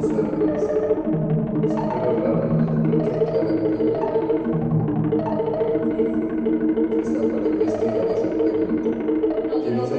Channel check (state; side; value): identical; both; correlation 1.00